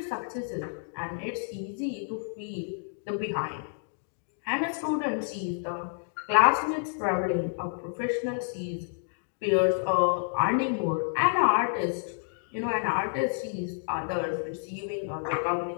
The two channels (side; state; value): right; silent; digital silence